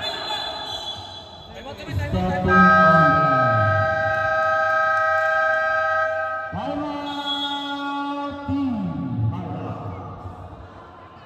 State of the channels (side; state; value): both; identical; correlation 1.00